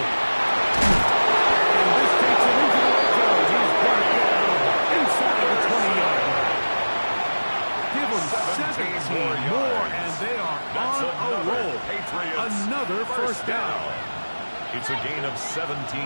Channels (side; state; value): both; inverted; correlation -1.00